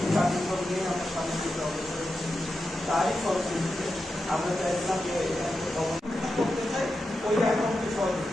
কার্যক্রম নিয়ে আমরা সামনে দিকে অগ্রসর হচ্ছি। তারই ফলশ্রুতিতে আমরা চাইছিলাম যে করতে চাই ওই অ্যাকাউন্টে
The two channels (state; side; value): normal; both; correlation 0.90